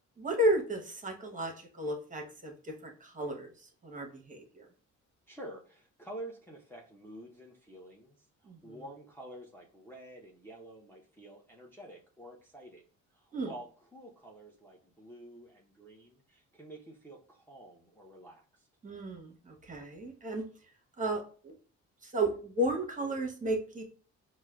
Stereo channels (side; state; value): both; normal; correlation 0.22